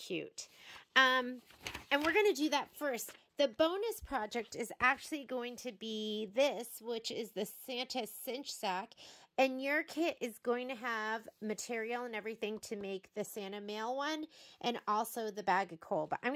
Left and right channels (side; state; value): both; identical; correlation 1.00